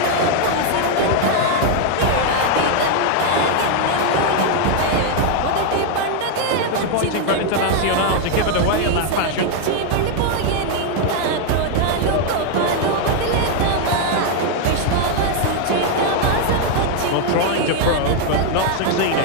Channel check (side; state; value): both; different; correlation 0.01